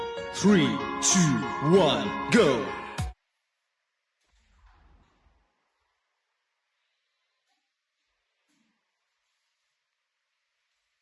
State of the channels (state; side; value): identical; both; correlation 1.00